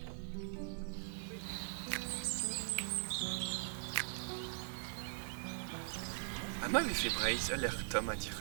vi fe breiz al er tom a dir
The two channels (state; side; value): silent; left; digital silence